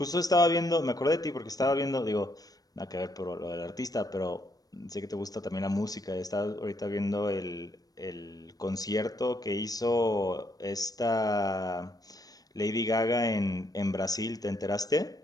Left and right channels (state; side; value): late; right; 0.18 ms